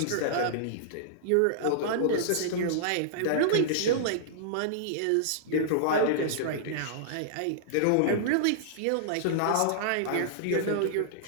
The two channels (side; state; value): both; different; correlation -0.02